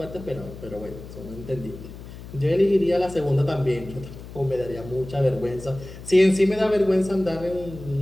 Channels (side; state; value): left; noise; hum, 14 dB below the sound